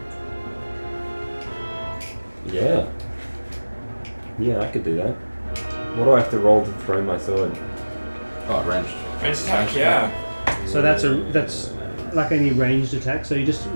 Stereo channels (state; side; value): inverted; both; correlation -1.00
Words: Yeah. Yeah, I could do that. What do I have to roll to throw my sword? Oh, ranged. Range attack, yeah. So that's like any ranged attack. So you just